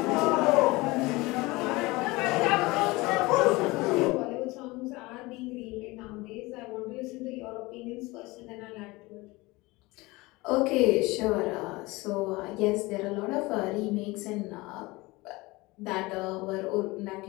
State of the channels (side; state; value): right; quieter; 22.1 dB